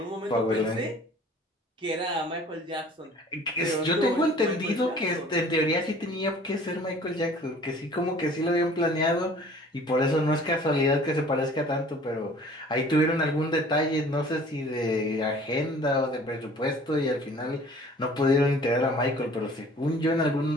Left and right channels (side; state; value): both; normal; correlation 0.50